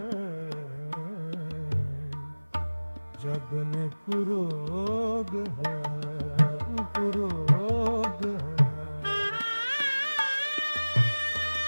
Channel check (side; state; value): both; inverted; correlation -1.00